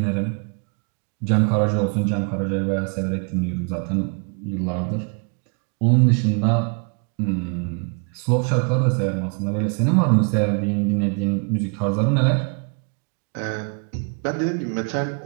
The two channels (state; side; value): quieter; left; 37.9 dB